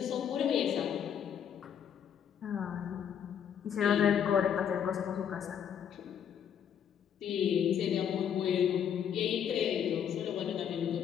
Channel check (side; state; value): right; quieter; 8.5 dB